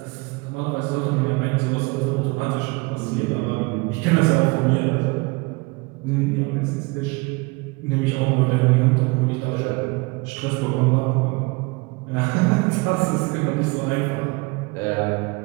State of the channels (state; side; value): quieter; left; 26.4 dB